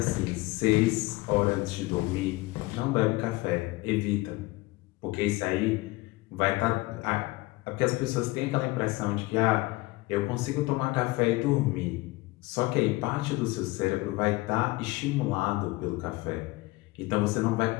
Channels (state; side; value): quieter; right; 21.2 dB